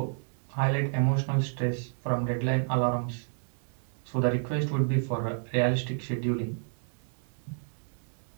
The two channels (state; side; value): silent; left; digital silence